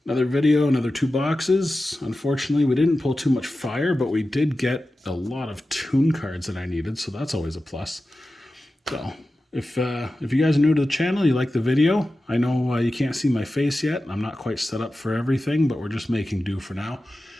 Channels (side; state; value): both; normal; correlation 0.94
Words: Another video, another 2 boxes. Unfortunately, we didn't pull too much fire, but we did get a lot of toon cards that I needed, so that's always a plus. So, if you guys are new to the channel, you like the video, I know you can't see my face yet. I'm not quite set up for everything, but we're just making do for now.